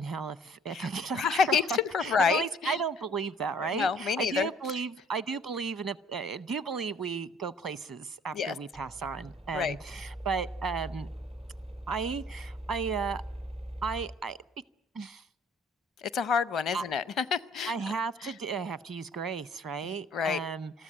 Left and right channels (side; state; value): both; normal; correlation 0.56